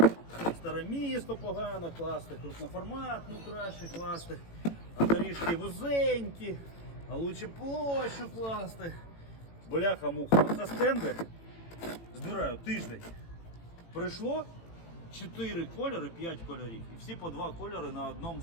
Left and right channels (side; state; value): right; late; 18 ms